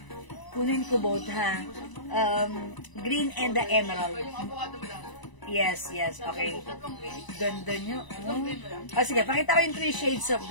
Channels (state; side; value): late; right; 1.0 ms